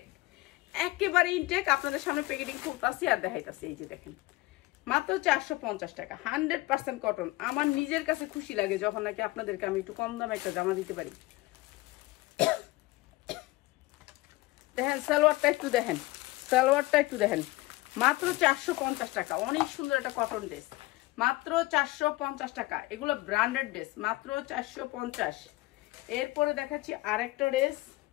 একেবারে ইনটেক। আপনাদের সামনে প্যাকেটিং করতেছি আর দেখাইতেছি। এই যে দেখেন, মাত্র 450 টাকা, 100% কটন। আমার নিজের কাছে খুশি লাগে যখন নাকি আপনাদেরকে আমি একটু কম দামে একটা জামা দিতে পারি। দেখেন সালোয়ারটা একটু দেখেন, মাত্র 450 টাকা। অনেক সুন্দর একটা কটন ড্রেস, মাত্র 450 টাকা। এগুলো ব্র্যান্ডেড ড্রেস, মাত্র 450। এরপরে দেখাচ্ছি আরেকটা ড্রেস।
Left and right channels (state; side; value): quieter; right; 20.4 dB